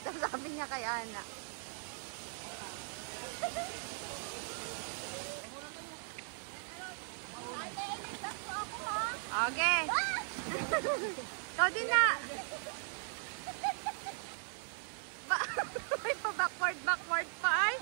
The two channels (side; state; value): left; silent; 52 dB below the other